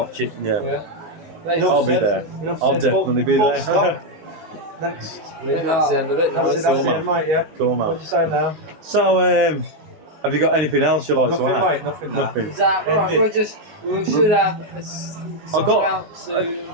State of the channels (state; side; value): late; left; 19 ms